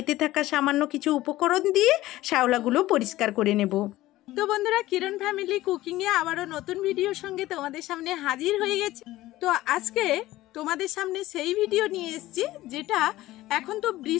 থাকা সামান্য কিছু উপকরণ দিয়ে শ্যাওলাগুলো পরিষ্কার করে নেব। তো বন্ধুরা, কিরণ ফ্যামিলি কুকিংয়ে আবারও নতুন ভিডিওর সঙ্গে তোমাদের সামনে হাজির হয়ে গেছে। তো আজকে তোমাদের সামনে সেই ভিডিও নিয়ে এসেছি যেটা এখন তো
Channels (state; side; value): quieter; right; 16.5 dB